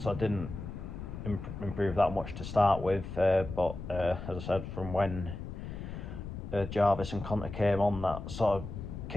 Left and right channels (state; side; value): noise; left; rumble, 8 dB below the sound